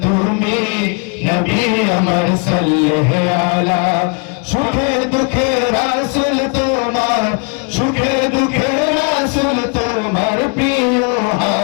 তুমি নবী আমার সাল্লাল্লাহু আলা। সুখে দুঃখে রাসূল তোমার, সুখে দুঃখে রাসূল তোমার প্রিয়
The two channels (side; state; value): right; quieter; 35.0 dB